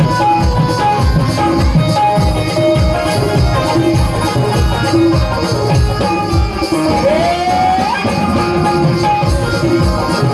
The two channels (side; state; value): both; identical; correlation 1.00